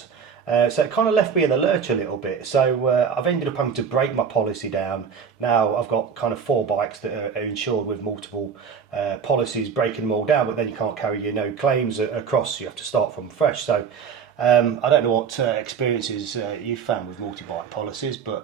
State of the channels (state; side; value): quieter; left; 6.6 dB